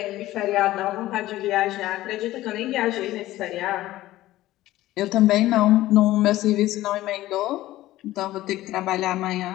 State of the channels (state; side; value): quieter; right; 15.8 dB